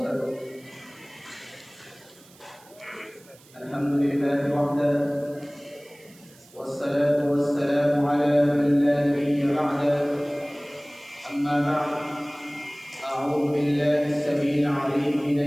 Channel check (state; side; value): noise; right; hiss, 26 dB below the sound